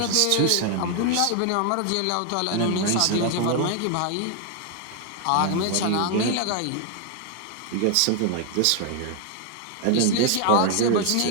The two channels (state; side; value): different; both; correlation 0.00